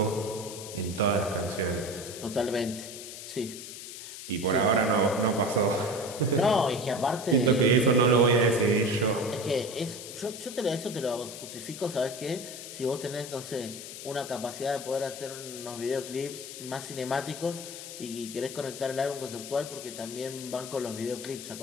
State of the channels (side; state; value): left; noise; hiss, 11 dB below the sound